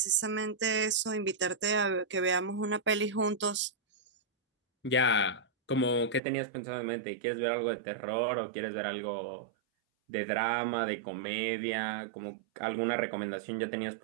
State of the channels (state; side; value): drops out; left; at 6.2 s